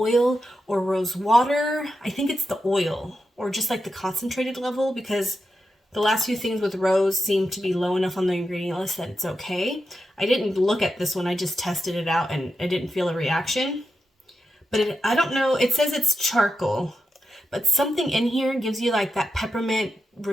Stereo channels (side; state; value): both; normal; correlation 0.88